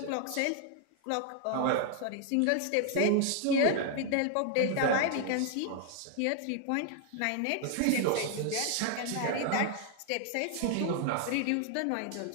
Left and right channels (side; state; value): both; different; correlation 0.00